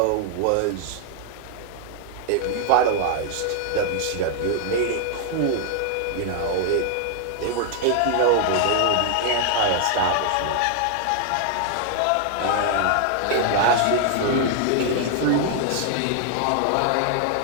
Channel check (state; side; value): different; both; correlation 0.00